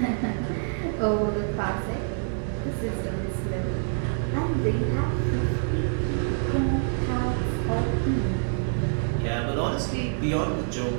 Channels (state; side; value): silent; left; 61 dB below the other